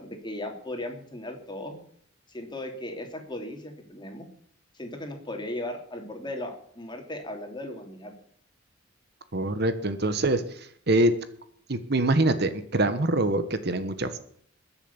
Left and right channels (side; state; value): both; normal; correlation 0.33